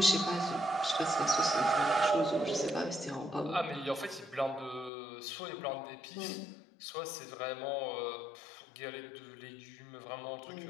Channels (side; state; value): right; drops out; at 4.9 s